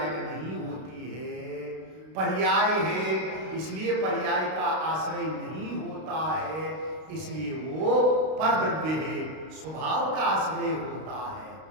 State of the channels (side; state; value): left; late; 32 ms